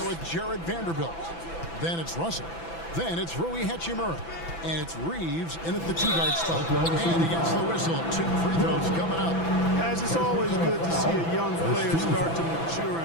with Jared Vanderbilt. Then it's Russell. Then it's Rui Hachimura. And it's Reeves in at the 2-guard spot. And he gets the whistle. 2 free throws coming up. Guys, it's always good to see a young player start to mature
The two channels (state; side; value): late; right; 6.0 ms